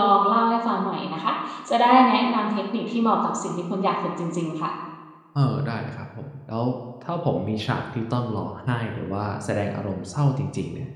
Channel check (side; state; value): both; identical; correlation 1.00